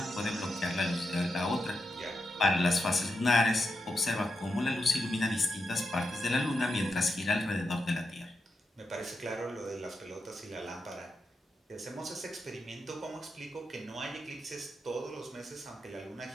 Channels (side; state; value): both; normal; correlation 0.86